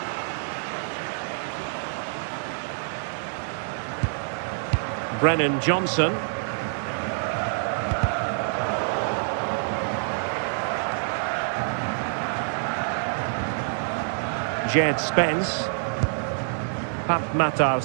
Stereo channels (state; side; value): silent; left; 61 dB below the other